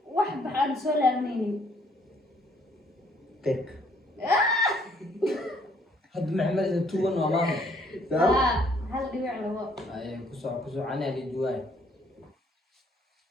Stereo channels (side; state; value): both; normal; correlation 0.65